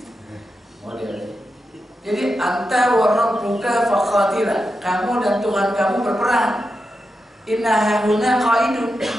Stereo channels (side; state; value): both; normal; correlation 0.88